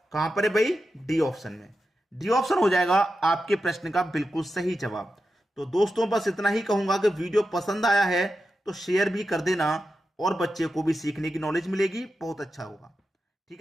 कहां पर है भाई? डी ऑप्शन में। डी ऑप्शन हो जाएगा आपके प्रश्न का बिल्कुल सही जवाब। तो दोस्तों बस इतना ही कहूंगा कि वीडियो पसंद आया है तो शेयर भी कर देना, और बच्चे को भी सीखने की नॉलेज मिलेगी, बहुत अच्छा होगा। ठीक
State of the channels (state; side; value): normal; both; correlation 0.90